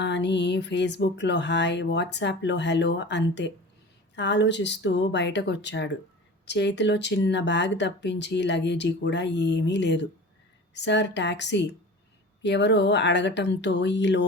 అని ఫేస్బుక్లో హాయ్, వాట్సాప్లో హలో అంతే. ఆలోచిస్తూ బయటకొచ్చాడు. చేతిలో చిన్న బ్యాగ్ తప్పించి లగేజీ కూడా ఏమీ లేదు. సార్ టాక్సీ ఎవరో అడగటంతో ఈ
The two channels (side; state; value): both; normal; correlation 0.37